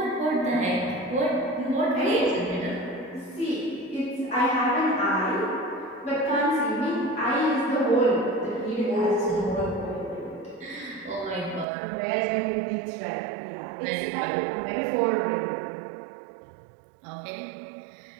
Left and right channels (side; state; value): left; drops out; at 11.7 s